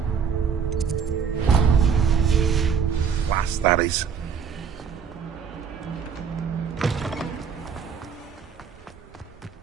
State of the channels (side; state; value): left; quieter; 6.7 dB